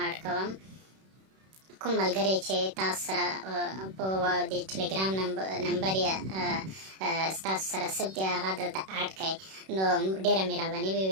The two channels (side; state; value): left; late; 31 ms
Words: اډ کوم کوم ملګری چې تاسو سره په د ټلګرام نمبر یا ستاسو سره ثبت دی هغه دلته اډ کړئ نو ډېره مهرباني به